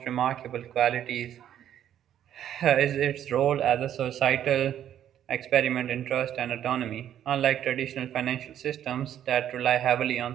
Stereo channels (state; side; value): quieter; left; 10.6 dB